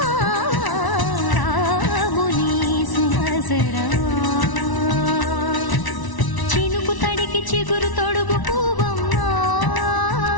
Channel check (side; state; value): right; late; 1.0 ms